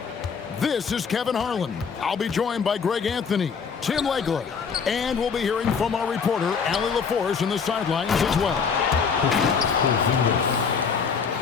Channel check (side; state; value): right; quieter; 6.0 dB